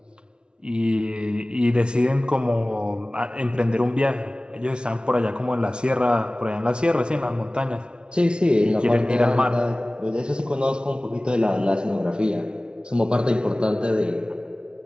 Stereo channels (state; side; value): late; left; 0.055 ms